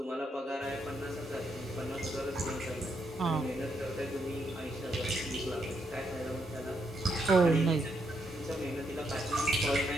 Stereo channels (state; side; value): normal; both; correlation 0.78